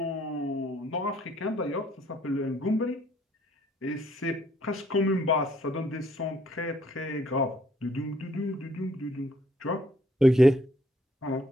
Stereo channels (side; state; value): both; normal; correlation 0.65